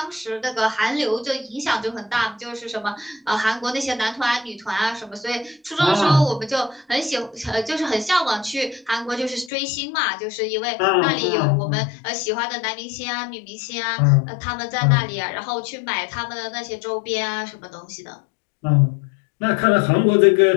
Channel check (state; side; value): drops out; right; at 9.5 s